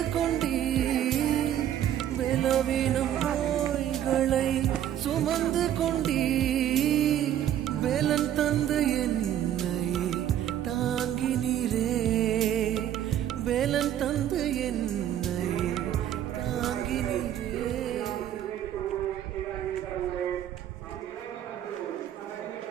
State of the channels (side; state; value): left; quieter; 11.0 dB